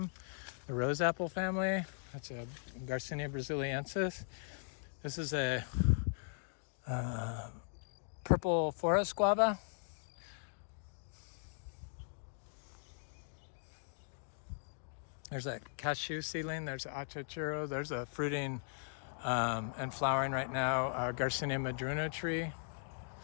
the rose apple family. That's a Garcinia brasiliensis. This is a purple forest guava. There's a cashew seedling. There's an Achachairu. There's a fruiting and flowering right now. Garcinia madruna tree.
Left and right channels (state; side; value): silent; right; digital silence